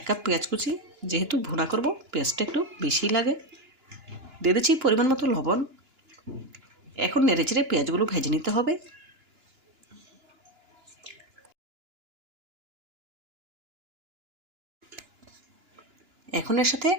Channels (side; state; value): left; late; 2.9 ms